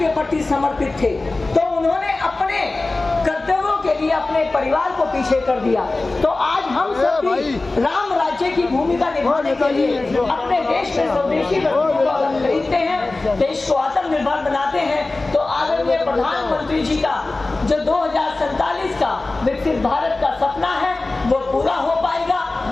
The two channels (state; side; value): quieter; right; 3.2 dB